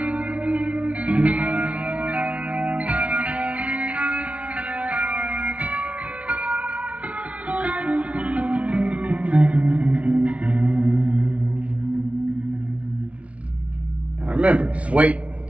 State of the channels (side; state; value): left; late; 0.064 ms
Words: Remember, just wait